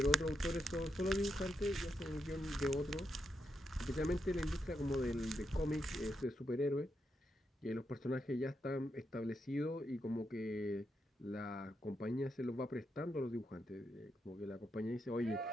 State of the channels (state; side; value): normal; both; correlation 0.83